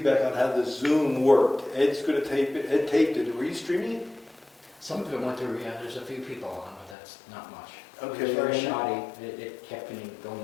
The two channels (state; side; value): drops out; right; at 7.0 s